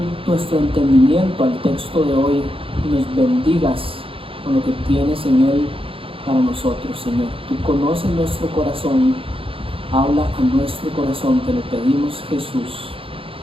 nuestro entendimiento al texto de hoy y nos bendigas con lo que tienes en él para nosotros, Señor. Tú conoces nuestro corazón, habla a nuestro corazón, te lo pedimos, Jesús.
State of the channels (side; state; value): left; late; 0.26 ms